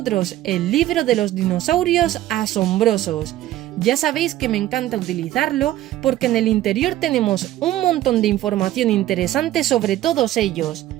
el libro de los dinosaurios asombrosos. Ya sabéis que me encanta utilizarlo porque en el interior tenemos un montón de información interesante sobre todos ellos.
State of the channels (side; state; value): left; quieter; 14.2 dB